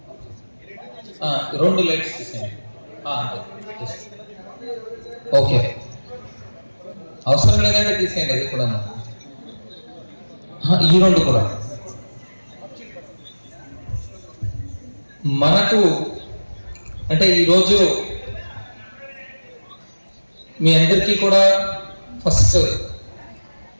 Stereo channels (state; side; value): inverted; both; correlation -1.00